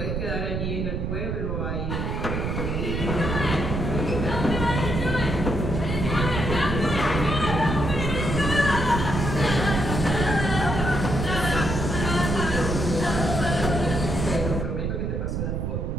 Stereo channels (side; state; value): right; noise; rumble, 1 dB below the sound